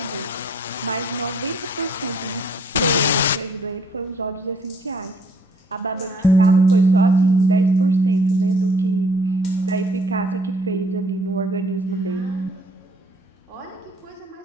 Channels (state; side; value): normal; both; correlation 0.61